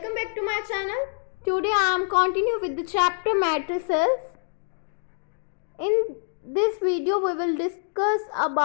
back to my channel. Today I am continuing with the chapter matrices. In this video we will discuss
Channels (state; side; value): silent; right; digital silence